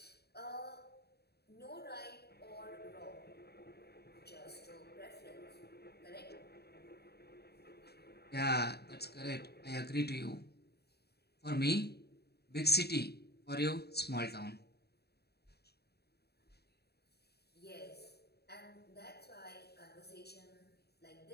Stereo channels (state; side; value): late; right; 0.47 ms